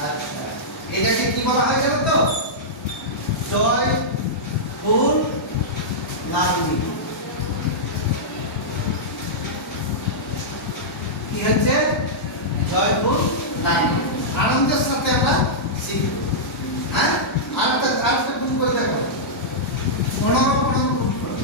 আচ্ছা, এটাকে কি বলা হয় জানো তো? জয় ফুল লাগনি। কি হচ্ছে? জয় ফুল লাগনি। আনন্দের সাথে আমরা শিখব। হ্যাঁ, আরেকটা গুণ করে দেখো। 15 গুণ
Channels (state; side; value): normal; both; correlation -0.11